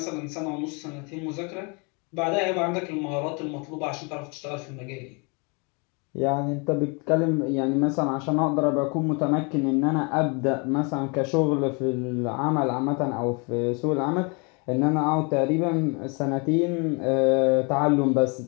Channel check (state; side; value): quieter; right; 32.4 dB